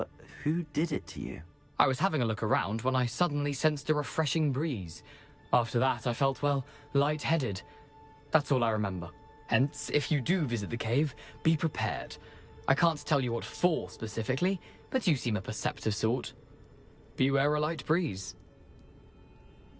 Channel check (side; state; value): both; identical; correlation 1.00